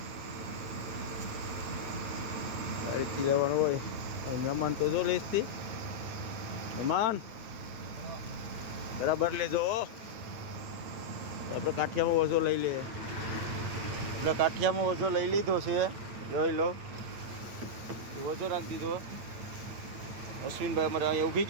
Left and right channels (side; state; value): left; late; 8.8 ms